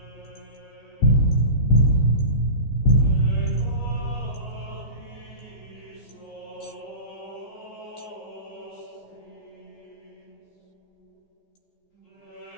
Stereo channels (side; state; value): right; late; 15 ms